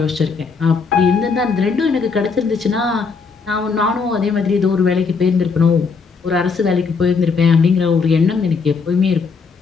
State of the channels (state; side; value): quieter; right; 5.0 dB